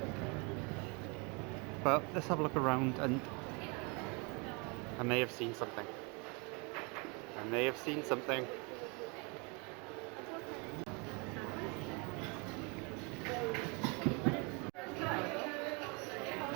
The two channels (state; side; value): quieter; left; 31.4 dB